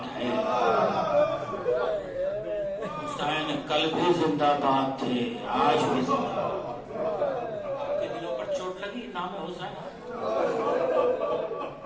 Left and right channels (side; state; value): both; identical; correlation 1.00